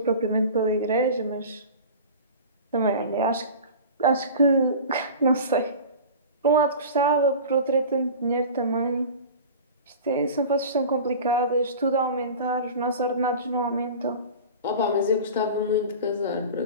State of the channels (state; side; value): inverted; both; correlation -0.36